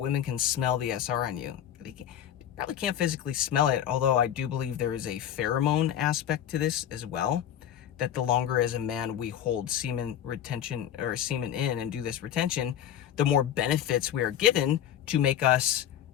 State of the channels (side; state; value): right; quieter; 10.5 dB